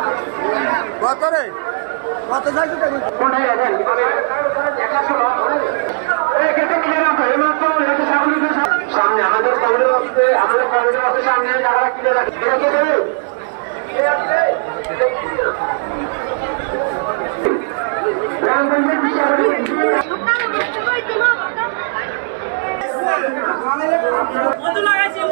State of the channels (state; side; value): silent; left; digital silence